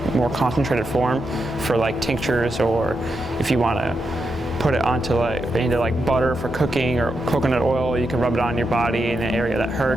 more concentrated form for like tinctures, or if you want to put it onto into butter for cooking, or coconut oil, you can rub it on your body in an area that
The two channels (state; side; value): normal; both; correlation 0.85